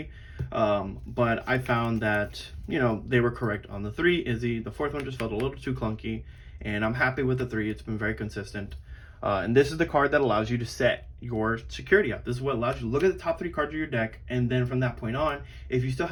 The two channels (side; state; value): both; identical; correlation 1.00